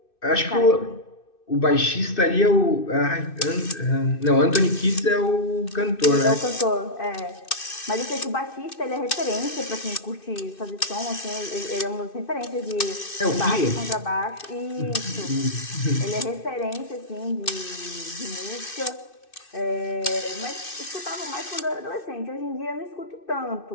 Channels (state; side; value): late; right; 2.6 ms